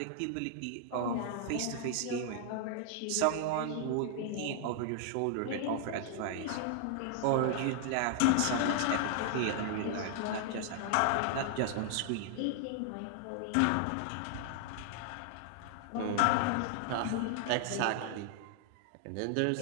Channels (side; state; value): both; different; correlation 0.00